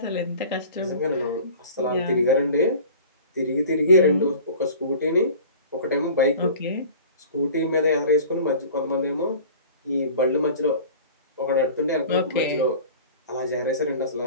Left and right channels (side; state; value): both; inverted; correlation -0.42